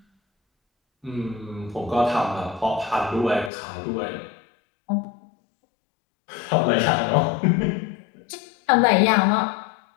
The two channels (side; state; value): right; drops out; at 3.5 s